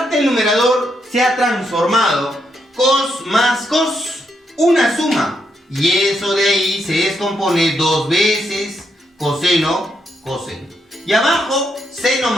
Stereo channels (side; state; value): both; normal; correlation 0.79